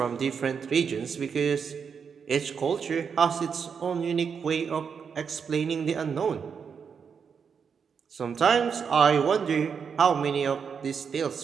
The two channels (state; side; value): quieter; left; 6.5 dB